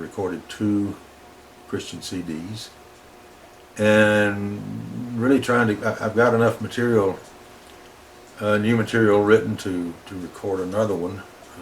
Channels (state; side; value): identical; both; correlation 1.00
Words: 2 Christian CDs, and really trying to. I've got enough material, new material written to record another one.